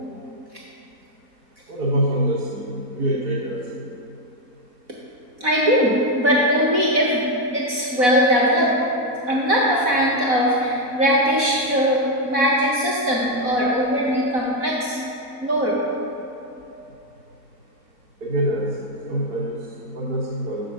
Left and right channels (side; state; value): left; late; 4.1 ms